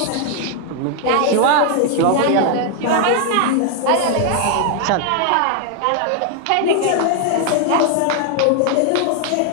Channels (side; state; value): both; different; correlation 0.00